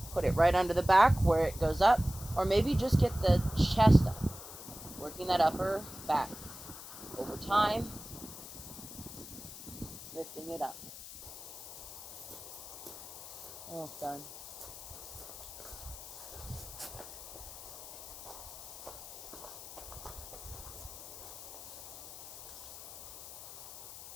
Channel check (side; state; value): left; noise; hiss, 12 dB below the sound